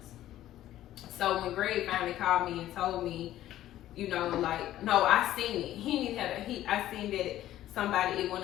So when Greg finally called me and told me, you know, like, no, I seen it. I seen that somebody, it went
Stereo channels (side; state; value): right; quieter; 13.5 dB